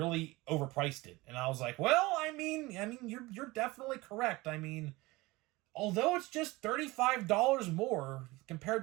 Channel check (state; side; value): quieter; left; 21.3 dB